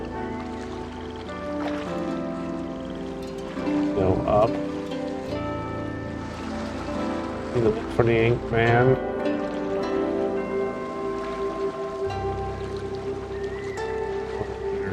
Go up. Need to look for the ink man.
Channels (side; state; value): both; identical; correlation 1.00